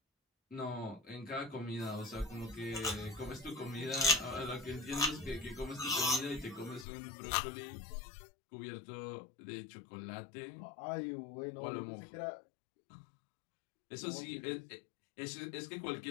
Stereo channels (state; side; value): drops out; right; at 6.9 s